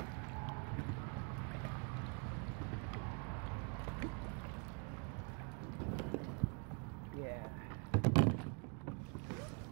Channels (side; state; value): left; quieter; 36.0 dB